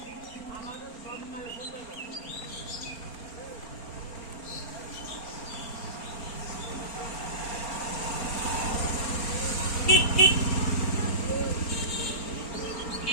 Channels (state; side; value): late; right; 4.4 ms